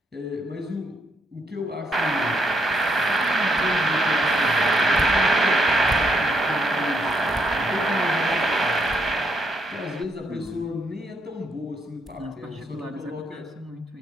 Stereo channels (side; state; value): both; normal; correlation 0.76